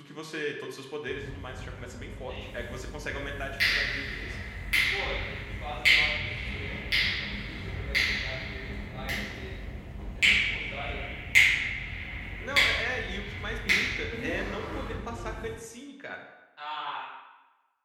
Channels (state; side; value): identical; both; correlation 1.00